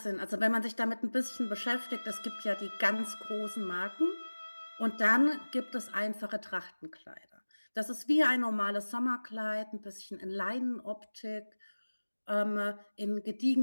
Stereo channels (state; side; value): inverted; both; correlation -1.00